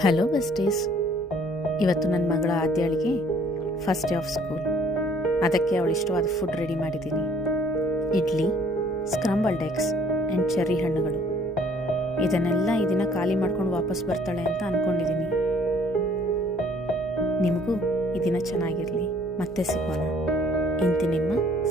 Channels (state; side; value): normal; both; correlation 0.59